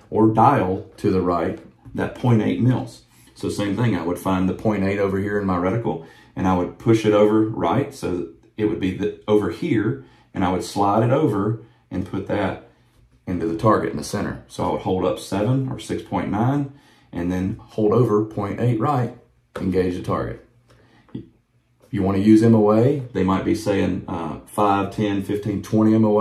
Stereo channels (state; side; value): identical; both; correlation 1.00